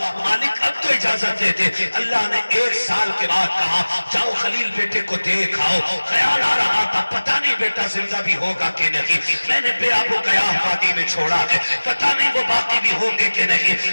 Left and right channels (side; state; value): both; inverted; correlation -1.00